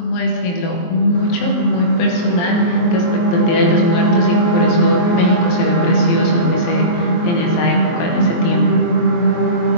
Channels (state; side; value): late; right; 23 ms